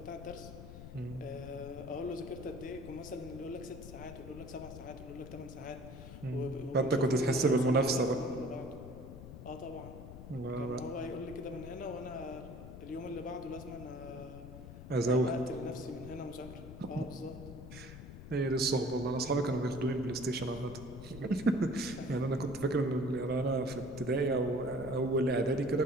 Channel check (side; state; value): left; noise; rumble, 12 dB below the sound